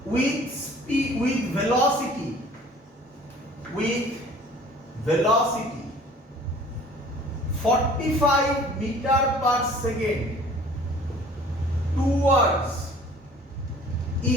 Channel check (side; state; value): both; normal; correlation 0.50